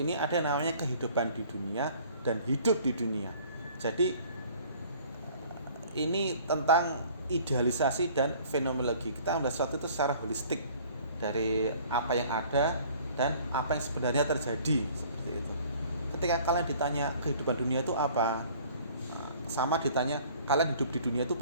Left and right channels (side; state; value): both; inverted; correlation -0.52